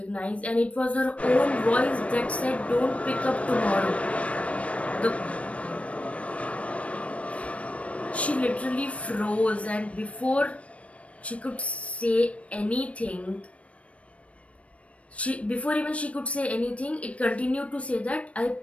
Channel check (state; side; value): late; right; 0.064 ms